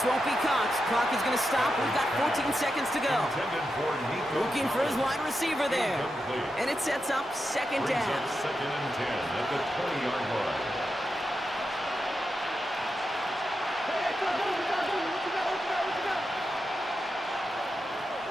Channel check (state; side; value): normal; both; correlation 0.88